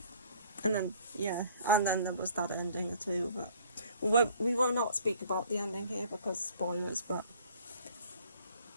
And then, yeah, and then there was that ending too, but we will not speak about the ending here because spoilers, but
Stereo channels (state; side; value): inverted; both; correlation -0.55